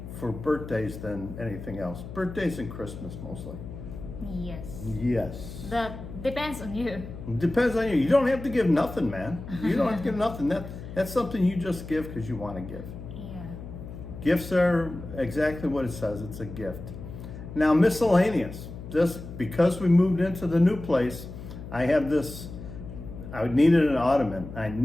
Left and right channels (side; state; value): left; noise; hum, 11 dB below the sound